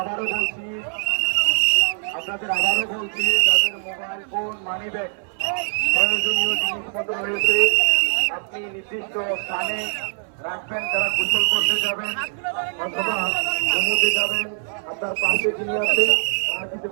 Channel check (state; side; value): silent; left; 62 dB below the other